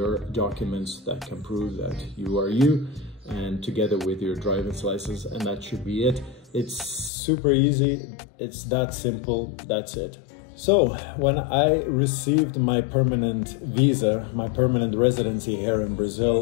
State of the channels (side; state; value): right; drops out; at 7.1 s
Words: documents that can prove that you are you, and together with your driver's license, and that should be it. It's super easy, it's that simple, that's it. So when I received my permanent visa, my permanent residency here in